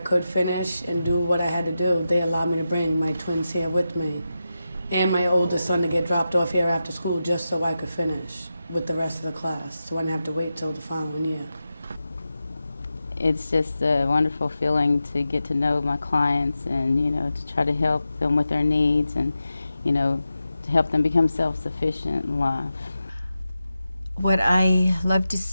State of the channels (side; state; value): both; inverted; correlation -0.91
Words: finish and do what I had to do, they allowed me to bring my twins here with me and my oldest son to get dropped off here after school just so I could finish with the rest of the class, so I didn't have to wait till the following year. It's just a wonderful feeling to get to know my clients and, you know, to try to help them with their needs and, you know, to help them become self-sufficient in life. What I love to